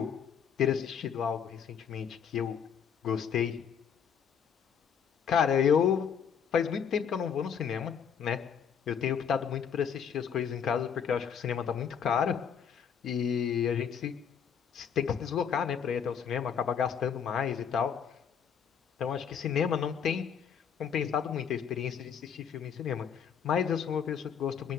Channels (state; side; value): quieter; right; 7.5 dB